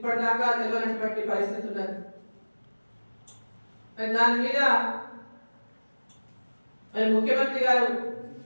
తెలియనటువంటి పరిస్థితి ఉన్నది. దాని మీద మరి ముఖ్యమంత్రి గారు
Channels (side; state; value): both; inverted; correlation -1.00